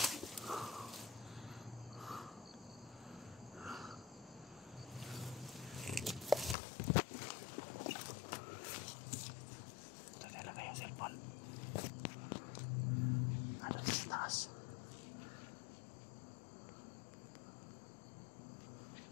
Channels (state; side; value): drops out; right; at 6.6 s